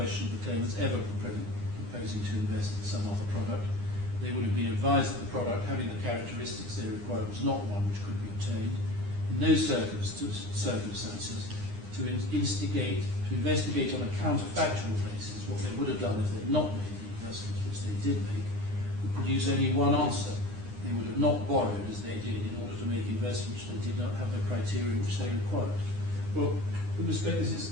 the claimants ever proposing to invest in some other product. They would have been advised that the product, having the characteristics they required, was not one which could be obtained. In those circumstances, to investigate on a counterfactual basis what they would have done if they had not made the investments which they did make, would produce only one answer. They would have not borrowed as they did in order to make investments which they did not have the criteria which they required. Well, with respect, this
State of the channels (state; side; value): late; left; 9.8 ms